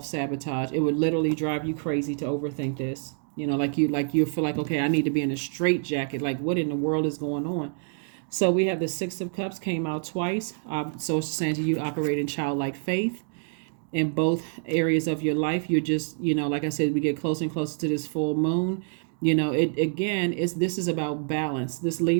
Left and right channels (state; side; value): silent; left; 60 dB below the other